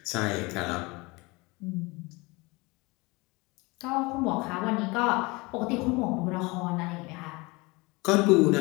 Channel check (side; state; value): right; quieter; 24.9 dB